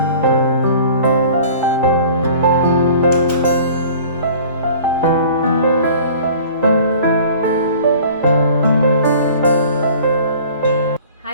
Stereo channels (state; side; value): inverted; both; correlation -0.46